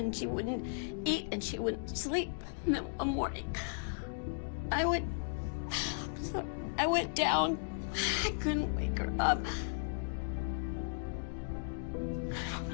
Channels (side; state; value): right; silent; digital silence